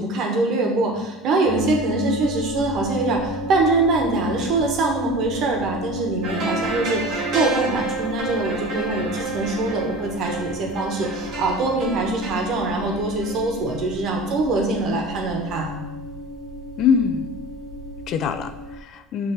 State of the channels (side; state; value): both; normal; correlation 0.37